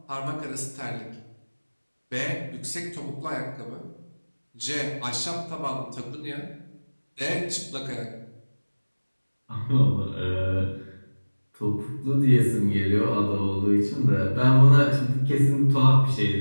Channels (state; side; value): inverted; both; correlation -1.00